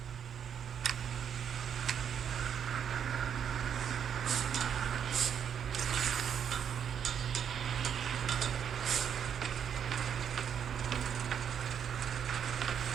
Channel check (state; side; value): quieter; left; 8.2 dB